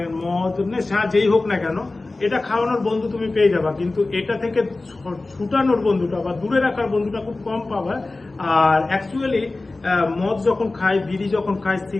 মদ, নেশা যেই হোক না কেন, এটা খাওয়ানোর বন্ধু তুমি পেয়ে যাবা, কিন্তু এটা থেকে ছুটানোর বন্ধুটা বা দূরে রাখার বন্ধুটা খুব কম পাবা। আর অ্যাকচুয়ালি মদ যখন খায়, বিড়ি যখন খায়,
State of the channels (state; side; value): quieter; right; 3.2 dB